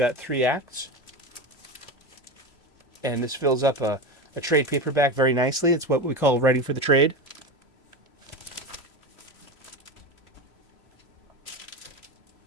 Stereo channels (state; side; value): late; right; 3.0 ms